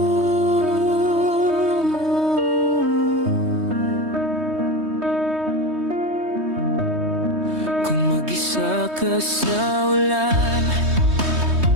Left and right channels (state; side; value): late; left; 3.2 ms